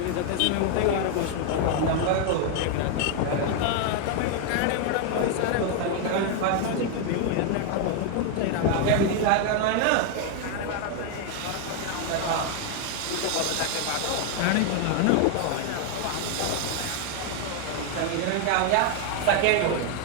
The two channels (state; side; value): different; both; correlation 0.00